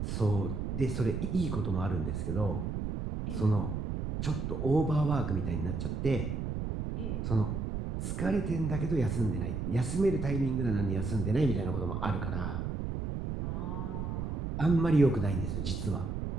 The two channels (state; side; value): noise; right; rumble, 3 dB below the sound